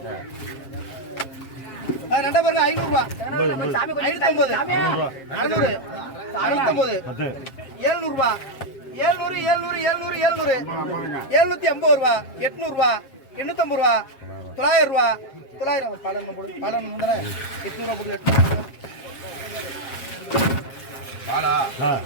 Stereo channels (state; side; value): late; right; 7.5 ms